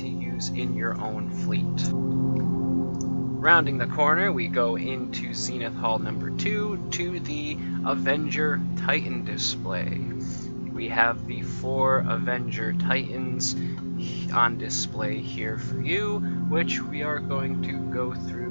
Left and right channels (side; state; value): both; inverted; correlation -1.00